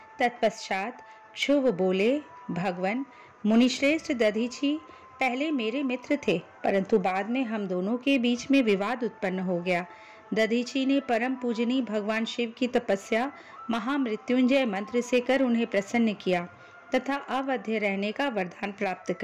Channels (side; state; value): both; identical; correlation 1.00